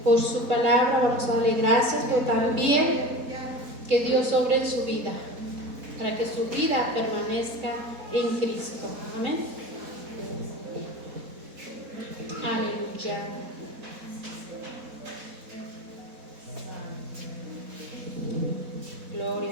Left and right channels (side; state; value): left; late; 4.1 ms